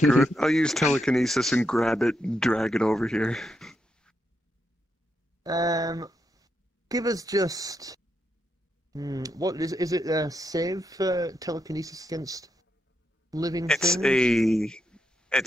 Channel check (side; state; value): both; normal; correlation 0.82